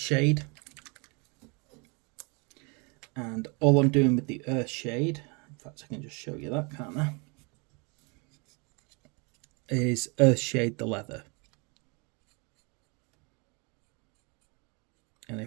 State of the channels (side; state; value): left; quieter; 31.7 dB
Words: and all I'm doing with the earth shade, in fact I can just show you that, can't I, is earth shade the leather. And